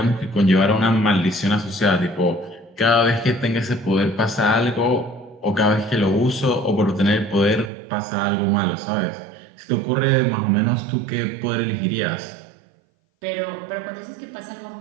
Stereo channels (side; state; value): left; drops out; at 7.7 s